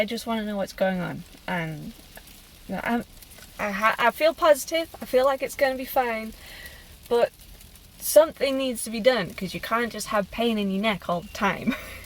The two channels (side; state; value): both; identical; correlation 1.00